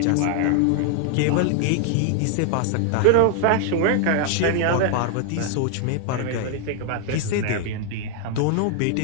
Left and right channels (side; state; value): both; different; correlation 0.00